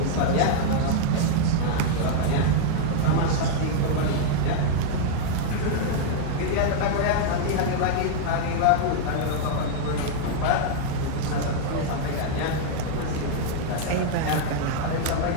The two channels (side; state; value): both; different; correlation -0.01